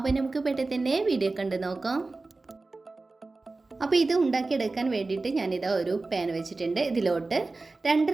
നമുക്ക് പെട്ടെന്ന് തന്നെ വീഡിയോ കണ്ട് നോക്കാം. അപ്പോൾ ഇത് ഉണ്ടാക്കിയെടുക്കാൻ വേണ്ടിയിട്ട് ഞാനിതാ ഒരു പാൻ വെച്ചിട്ടുണ്ട്. ഇതിലോട്ട്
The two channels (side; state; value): left; quieter; 3.4 dB